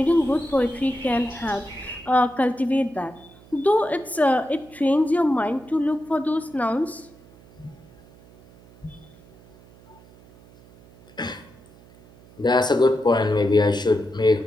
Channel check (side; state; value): right; noise; hum, 25 dB below the sound